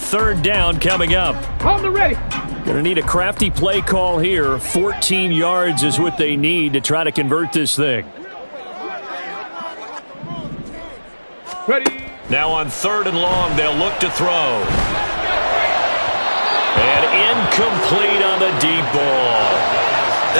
down coming up. On the ready. Going to need a crafty play call here. 14 yards is what they need to try to convert this thing. Ready. Now on 3rd and long, they'll look to throw. And incomplete on the deep ball.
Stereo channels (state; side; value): inverted; both; correlation -1.00